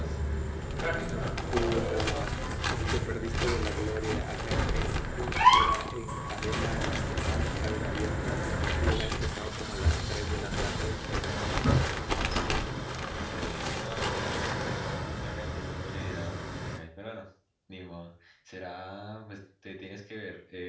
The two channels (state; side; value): identical; both; correlation 1.00